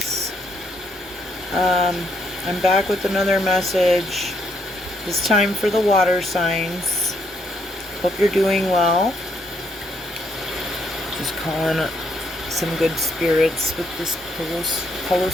I'm back with another message. It's time for the water signs. Hope you're doing well. Just calling some good spirits with this Palo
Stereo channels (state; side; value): normal; both; correlation 0.74